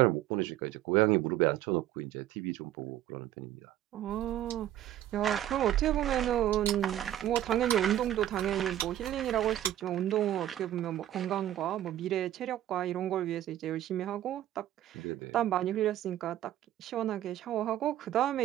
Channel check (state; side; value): quieter; left; 12.7 dB